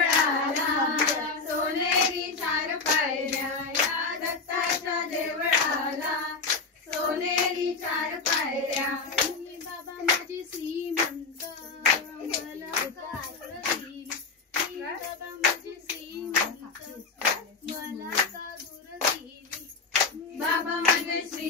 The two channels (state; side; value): quieter; right; 4.4 dB